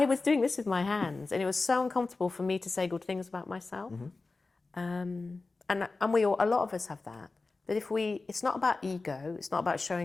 was doing this with my hands, and it was so uncomfortable for me to say good things about myself. And a lot of us have that. But it's not about ego, it's not about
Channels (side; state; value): right; quieter; 3.7 dB